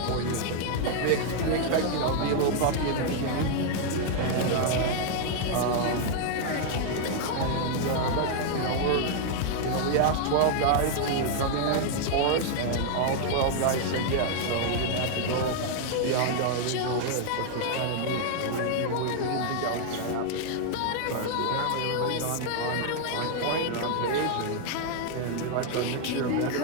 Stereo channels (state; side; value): different; both; correlation 0.00